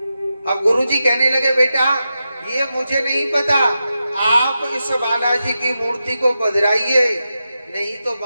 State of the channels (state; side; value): inverted; both; correlation -0.90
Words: अब गुरुजी कहने लगे बेटा ये मुझे नहीं पता, आप इस बालाजी की मूर्ति को पधराइए, नहीं तो